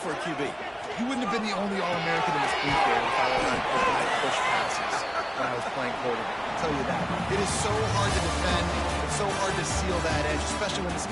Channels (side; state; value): both; identical; correlation 1.00